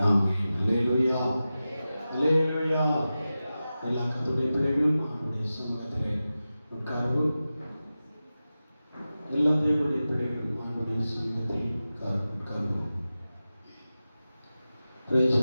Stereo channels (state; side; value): inverted; both; correlation -0.94